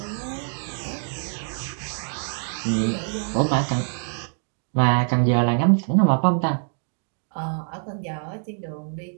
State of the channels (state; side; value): silent; left; 62 dB below the other